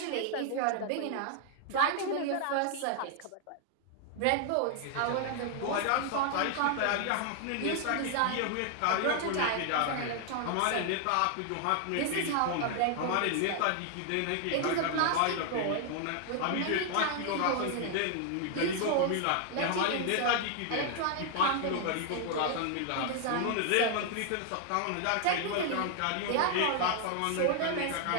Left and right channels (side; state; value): both; different; correlation 0.00